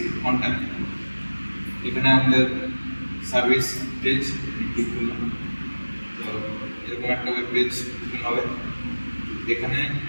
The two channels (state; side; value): inverted; both; correlation -1.00